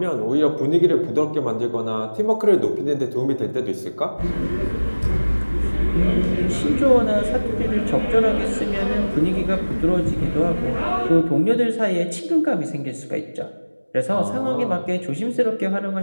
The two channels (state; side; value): inverted; both; correlation -1.00